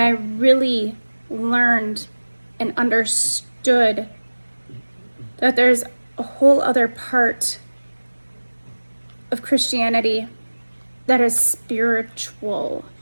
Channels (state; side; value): inverted; both; correlation -1.00